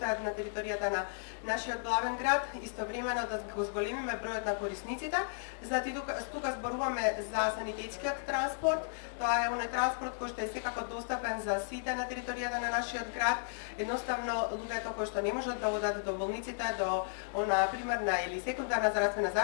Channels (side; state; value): right; silent; digital silence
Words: на територијата на нашиот главен град, истовремено да го зголемиме бројот на корисниците. Значи тука зборуваме за санитетскиот транспорт. Тоа е оној транспорт кој што е секако достапен за сите на територијата на нашиот град. Едноставно луѓето кои што не можат да одат до болниците, до она примерна или секундарна здравствена